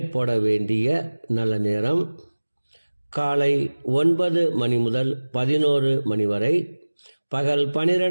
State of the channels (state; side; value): inverted; both; correlation -1.00